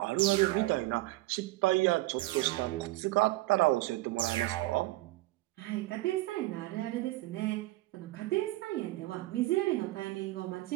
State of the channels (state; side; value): quieter; left; 18.9 dB